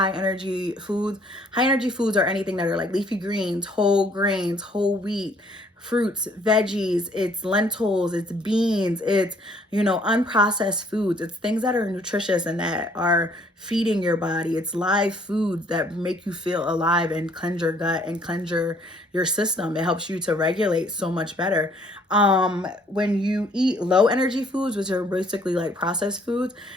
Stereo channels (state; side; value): normal; both; correlation 0.62